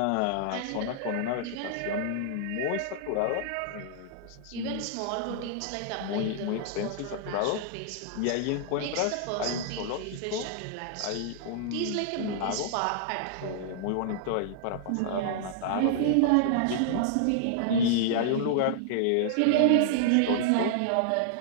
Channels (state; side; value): different; both; correlation -0.01